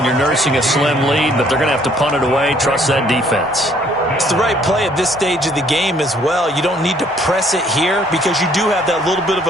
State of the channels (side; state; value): both; normal; correlation 0.63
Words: you're nursing a slim lead, but they're going to have to punt it away. Trust that defense. It's the right play at this stage of the game as well. You don't need to press it here because you do have that little bit of